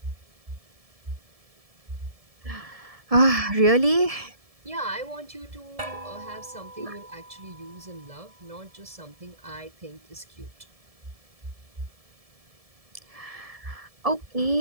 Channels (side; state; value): left; late; 1.7 ms